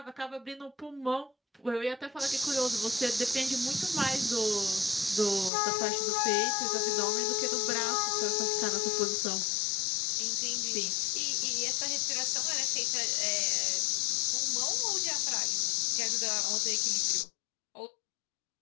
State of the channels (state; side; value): drops out; right; at 5.5 s